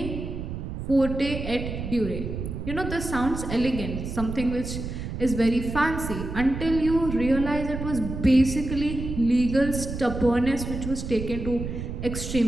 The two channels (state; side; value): noise; right; rumble, 6 dB below the sound